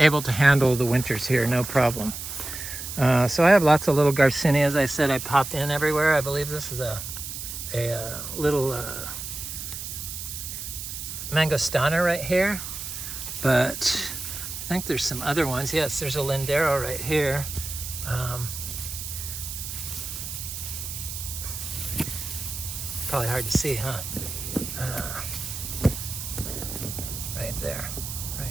to handle the winters here, no problem. So I have lots of little Garcinia. As I said, I popped in everywhere. I believe this is a little mangostana right here, but I think there's some other ones. Yes, there's a Lindero right here. Probably hard to see, huh? Right there, right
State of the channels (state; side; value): noise; right; hiss, 7 dB below the sound